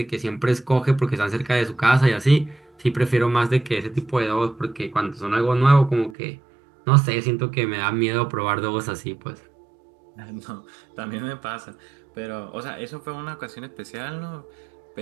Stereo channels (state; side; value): drops out; left; at 6.2 s